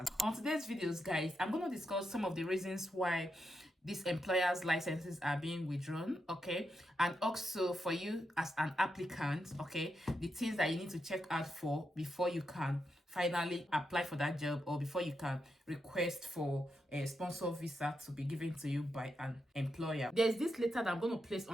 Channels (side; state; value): both; normal; correlation 0.85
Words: On today's videos, guys, I'm going to discuss some of the reasons why these employers' licenses are being withdrawn, okay, and also for you as an applicant, okay, the things that you need to check out for before you can finally apply for that job, or before you can request for a sponsor visa to be given to you by an employer. There's this letter that I'm going to place